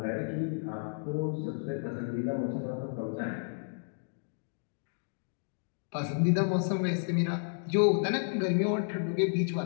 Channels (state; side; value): silent; right; digital silence